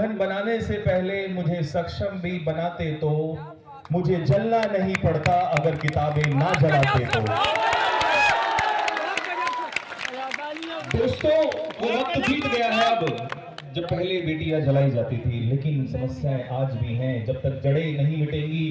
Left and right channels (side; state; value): both; identical; correlation 1.00